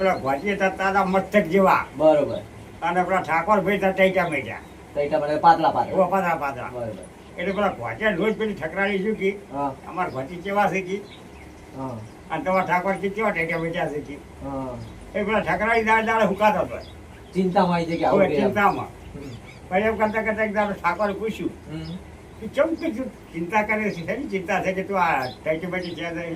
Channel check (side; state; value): both; identical; correlation 1.00